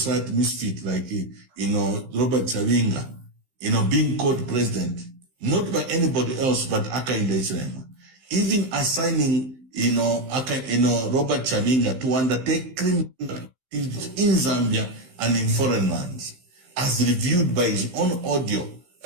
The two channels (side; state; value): left; late; 15 ms